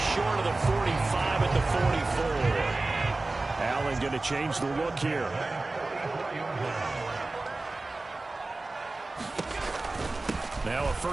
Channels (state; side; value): quieter; left; 3.2 dB